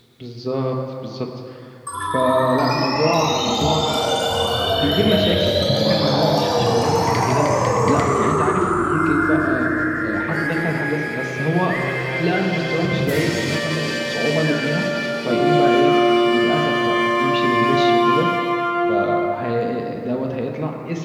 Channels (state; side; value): identical; both; correlation 1.00